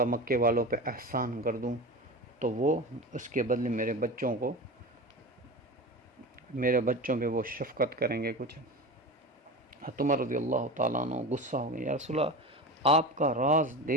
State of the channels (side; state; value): both; normal; correlation 0.28